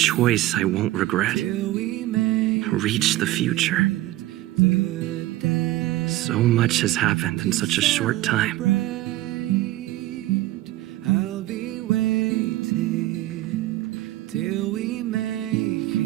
I won't regret. till we make Reach the future. the day. So much has happened in such a short time. I'll be waiting till we make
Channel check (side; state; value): left; quieter; 16.3 dB